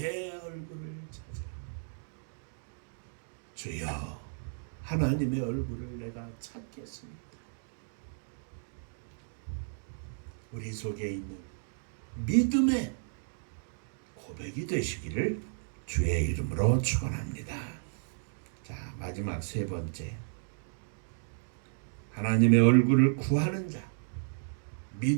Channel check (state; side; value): silent; left; digital silence